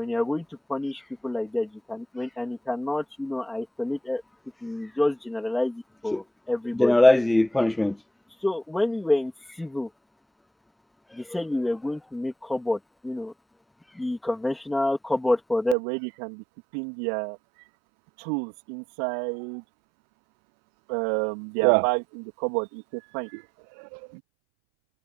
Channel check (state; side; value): drops out; left; at 15.8 s